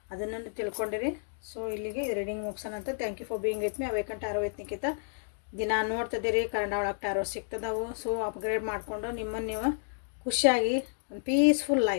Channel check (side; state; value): right; silent; digital silence